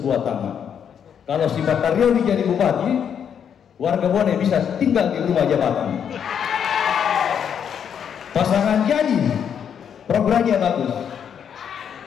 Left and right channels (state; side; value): quieter; right; 8.1 dB